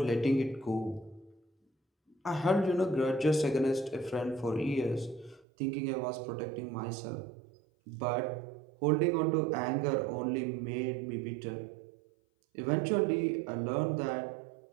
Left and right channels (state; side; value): drops out; left; at 5.5 s